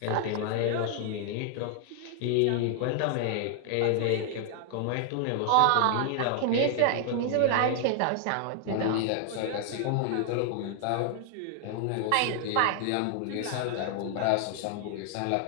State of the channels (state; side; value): different; both; correlation 0.00